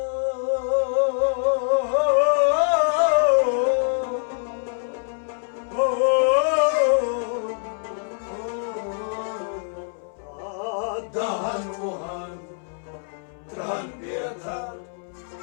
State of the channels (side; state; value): right; silent; 62 dB below the other